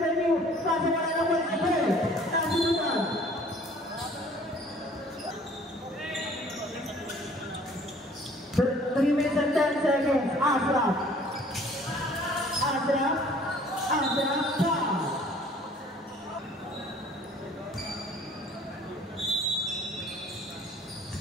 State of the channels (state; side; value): normal; both; correlation 0.54